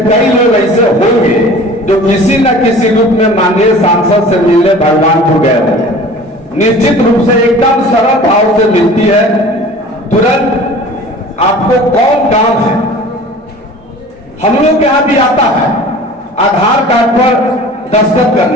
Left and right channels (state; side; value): normal; both; correlation 0.43